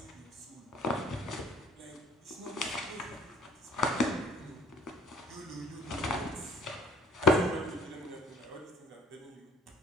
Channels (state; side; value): normal; both; correlation 0.55